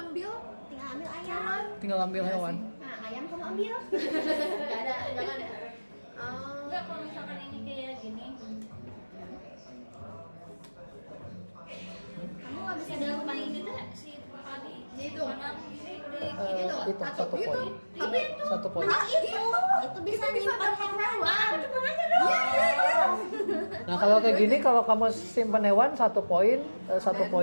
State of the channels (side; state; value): both; inverted; correlation -1.00